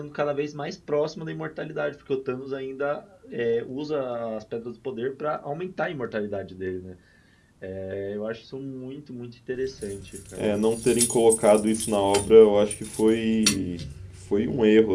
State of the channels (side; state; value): both; identical; correlation 1.00